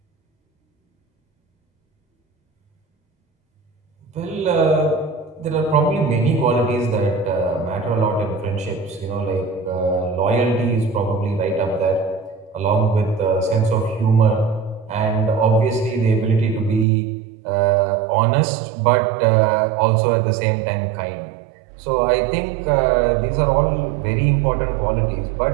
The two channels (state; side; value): drops out; left; at 16.9 s